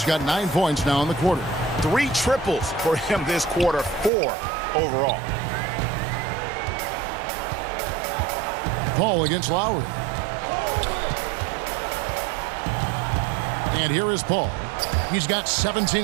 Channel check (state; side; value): drops out; left; at 4.1 s